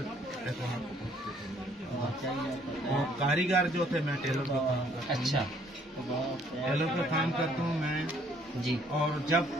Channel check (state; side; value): normal; both; correlation 0.63